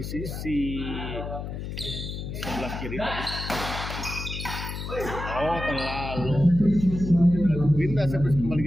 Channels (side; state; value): left; noise; hum, 6 dB below the sound